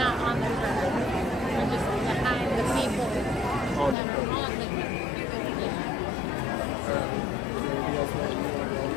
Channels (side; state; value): right; drops out; at 4.0 s